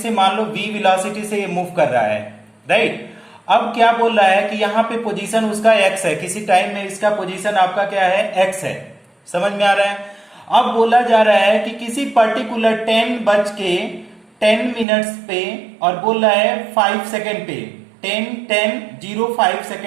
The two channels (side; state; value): left; drops out; at 14.9 s